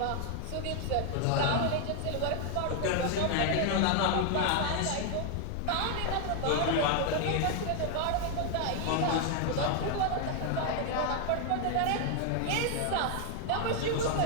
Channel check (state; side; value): different; both; correlation 0.00